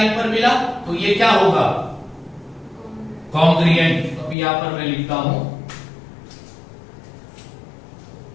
पर मिला, तो ये क्या होगा? कॉन्ग्रुएंट। तो यहां पर मैं लिखता हूं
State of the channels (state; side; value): drops out; right; at 4.4 s